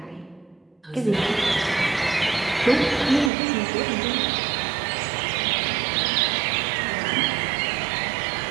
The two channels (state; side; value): drops out; left; at 3.3 s